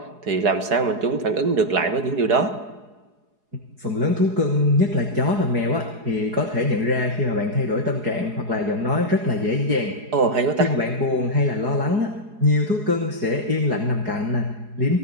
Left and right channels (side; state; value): left; late; 4.8 ms